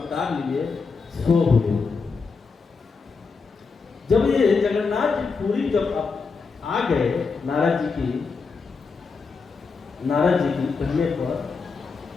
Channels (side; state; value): right; quieter; 4.8 dB